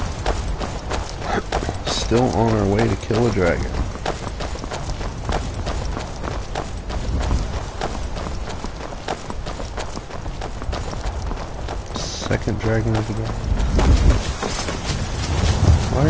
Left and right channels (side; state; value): both; identical; correlation 1.00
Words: Still on our way to kill a dragon. Second dragon of the day. Why are